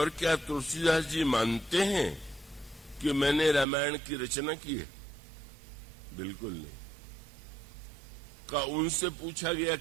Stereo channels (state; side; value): drops out; left; at 3.7 s